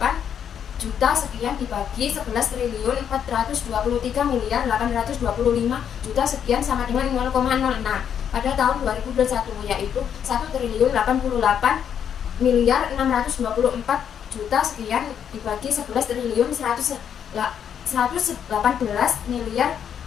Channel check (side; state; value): right; quieter; 8.5 dB